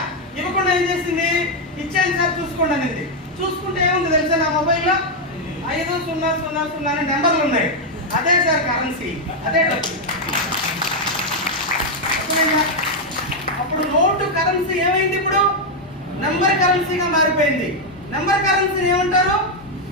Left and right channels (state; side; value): normal; both; correlation 0.01